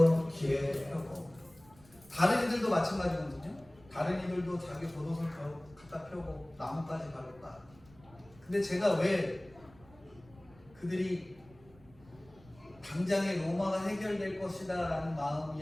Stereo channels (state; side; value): noise; right; rumble, 25 dB below the sound